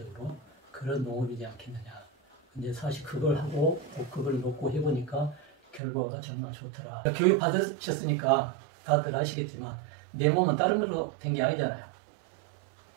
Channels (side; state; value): left; drops out; at 5.8 s